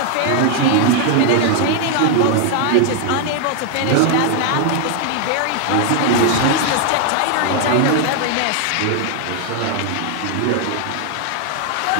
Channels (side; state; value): both; different; correlation 0.00